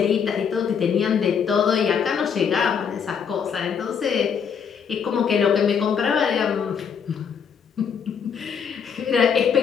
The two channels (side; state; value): right; quieter; 7.0 dB